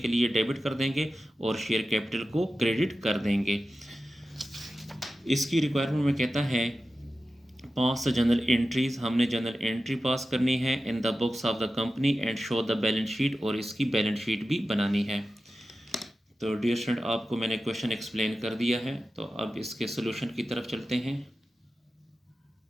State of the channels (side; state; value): both; normal; correlation 0.93